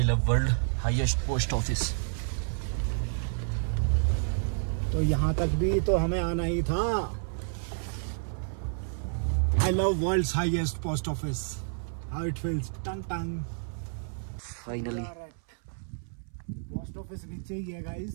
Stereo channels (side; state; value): left; silent; 58 dB below the other